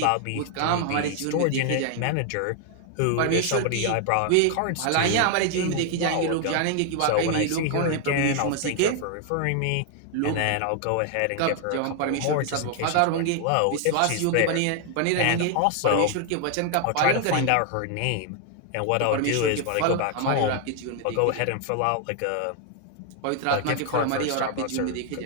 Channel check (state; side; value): different; both; correlation 0.00